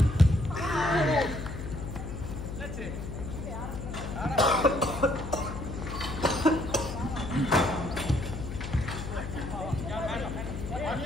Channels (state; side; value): noise; left; hum, 7 dB below the sound